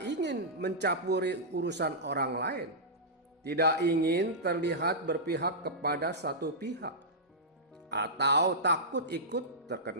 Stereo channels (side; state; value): both; normal; correlation -0.13